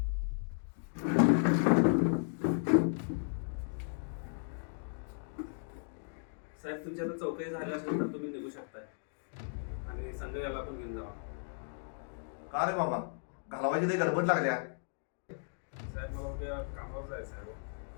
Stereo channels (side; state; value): right; silent; digital silence